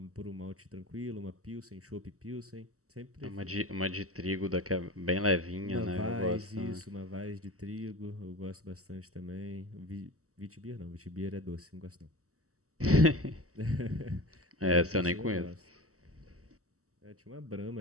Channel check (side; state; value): left; late; 0.65 ms